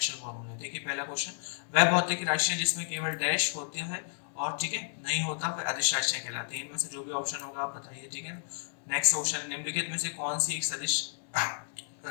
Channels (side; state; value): right; silent; digital silence